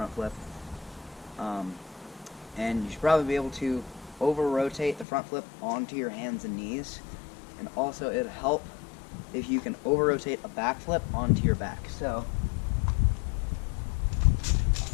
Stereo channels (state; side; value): drops out; right; at 5.1 s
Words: flip. And you should probably be able to over-rotate the front flip onto your hands and knees. And also, it'll help if you can over-rotate a back flip onto your back. So,